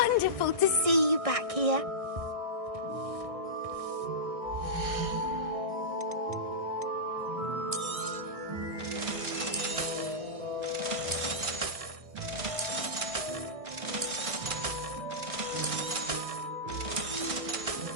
to see you back here.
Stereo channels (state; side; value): late; left; 1.6 ms